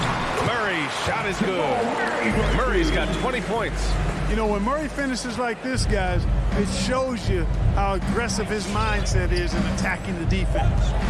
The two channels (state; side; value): identical; both; correlation 1.00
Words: Murray's shot is good. Murray's got 20 points. You know, when Murray finishes like this, guys, it shows you how aggressive his mindset is in attacking the defense.